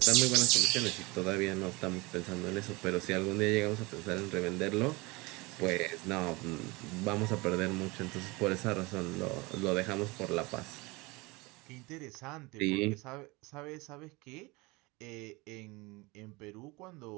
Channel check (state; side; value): quieter; left; 24.6 dB